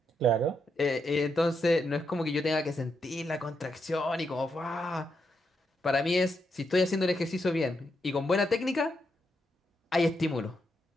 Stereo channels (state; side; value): normal; both; correlation 0.82